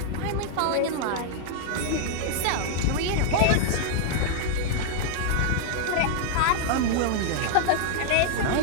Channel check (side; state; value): both; different; correlation -0.01